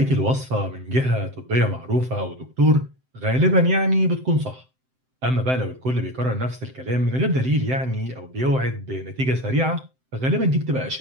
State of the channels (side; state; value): left; late; 7.7 ms